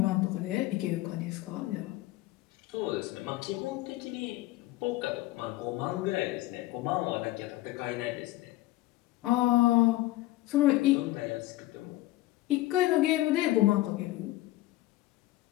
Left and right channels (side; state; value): right; quieter; 17.2 dB